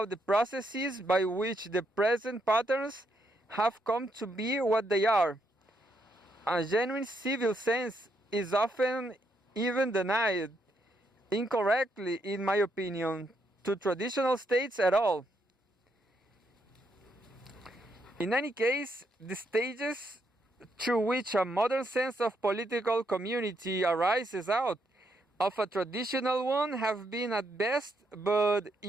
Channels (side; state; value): both; normal; correlation 0.77